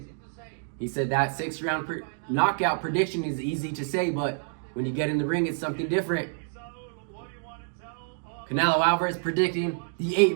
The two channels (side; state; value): left; silent; digital silence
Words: he said that 6-round knockout prediction is easy to say, but when you get in the ring, it's something different. Canelo Alvarez predicting the